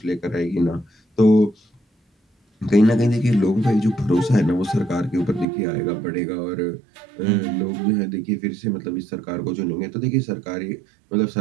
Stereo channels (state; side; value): drops out; left; at 5.5 s